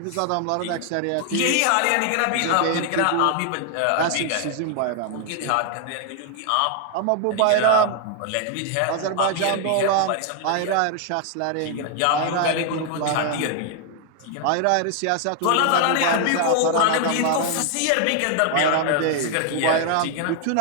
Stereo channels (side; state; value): both; different; correlation 0.00